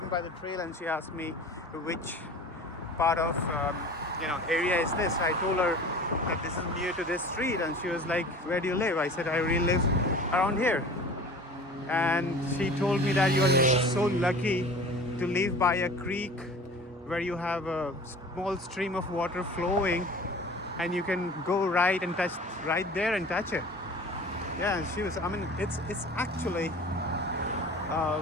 by the trail, and she asked me which part of, area is this. I told her that this is near to this street, and she was like, where do you live? I said, I really live around here. And she told me that you are so lucky to live by a creek where you have a small stream of water flowing, and you can go right and touch right there and touch it. Yeah, she was. I mean, it's actually,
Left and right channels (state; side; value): normal; both; correlation 0.41